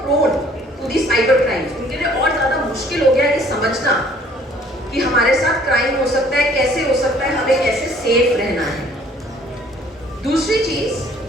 to the cyber crimes. उनके लिए और ज्यादा मुश्किल हो गया ये समझना कि हमारे साथ क्राइम हो सकता है, कैसे हो सकता है, हमें कैसे सेफ रहना है। दूसरी चीज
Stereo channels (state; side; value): normal; both; correlation 0.57